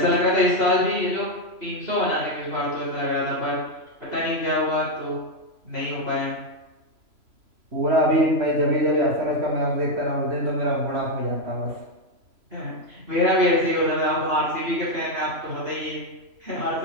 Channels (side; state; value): left; late; 3.0 ms